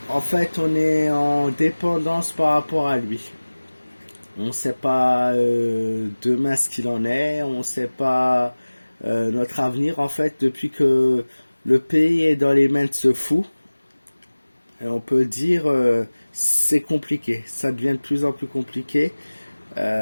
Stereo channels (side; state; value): both; inverted; correlation -1.00